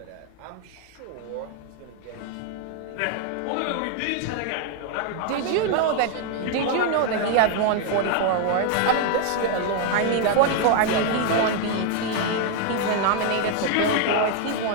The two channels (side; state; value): both; different; correlation 0.00